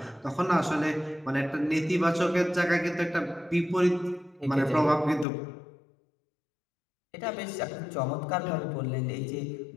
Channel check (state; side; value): drops out; right; at 5.2 s